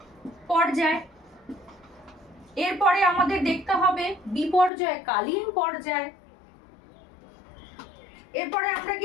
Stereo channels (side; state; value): right; drops out; at 4.7 s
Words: পর্যায়। এরপরে আমাদের দেখতে হবে বিপর্যয়কালীন পর্যায়। এরপরে আমরা